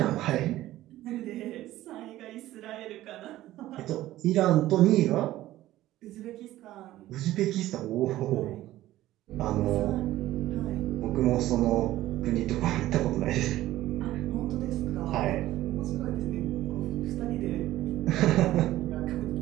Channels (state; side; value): quieter; left; 15.1 dB